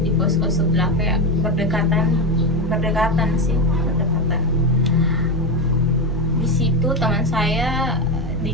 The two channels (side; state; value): both; normal; correlation 0.14